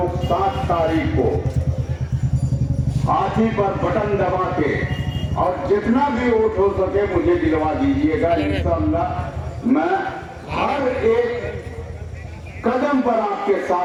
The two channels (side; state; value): both; identical; correlation 1.00